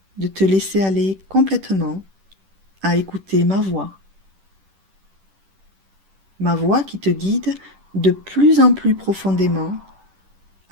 de te laisser aller complètement à écouter ma voix. Ma voix qui te guide de plus en plus profondément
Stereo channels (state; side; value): late; left; 10 ms